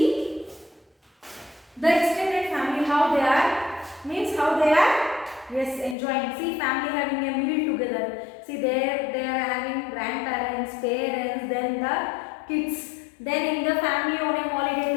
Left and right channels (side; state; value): right; drops out; at 6.0 s